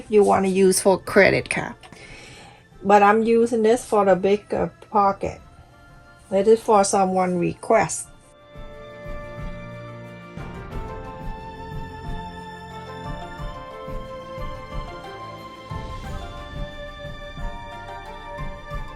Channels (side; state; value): both; identical; correlation 1.00